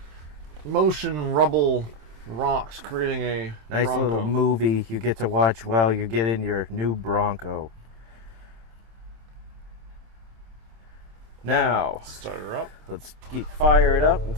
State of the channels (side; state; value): left; late; 27 ms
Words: motion rubble rocks creating a Nice Bronco. little movie you get to watch while you get in your new Bronco. Now, Start her up. let's fire it up and